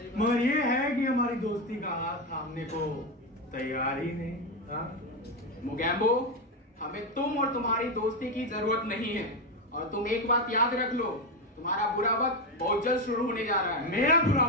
मगर ये है कि हमारी दोस्ती का हाथ थामने को तैयार ही नहीं। हाँ मोगैम्बो, हमें तुम और तुम्हारी दोस्ती की जरूरत नहीं है। और तुम एक बात याद रख लो, तुम्हारा बुरा वक्त बहुत जल्द शुरू होने जा रहा है। मेरा बुरा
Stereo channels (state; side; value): normal; both; correlation 0.11